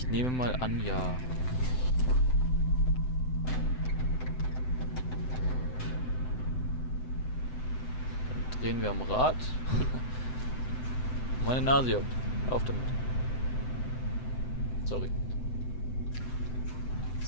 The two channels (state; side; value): late; right; 7.9 ms